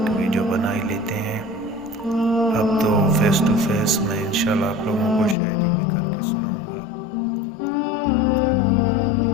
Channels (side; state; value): right; drops out; at 5.4 s